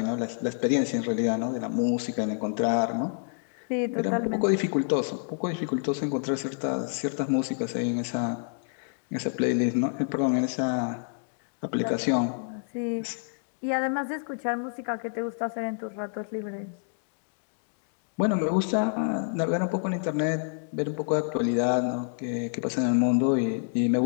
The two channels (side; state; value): right; silent; digital silence